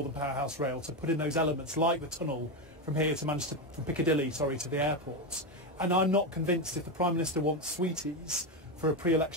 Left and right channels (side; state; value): both; normal; correlation 0.11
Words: Powerhouse Rail to put in those elements like the tunnel from here to Manchester, from Piccadilly, to the airport. And I'm not convinced if the Prime Minister wants sweeties for a